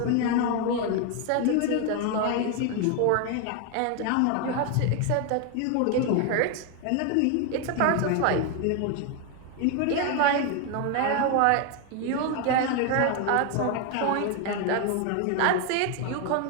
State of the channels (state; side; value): different; both; correlation 0.01